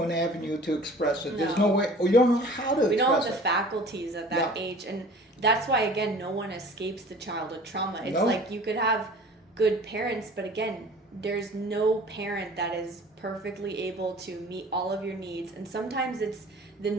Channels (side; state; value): both; normal; correlation 0.46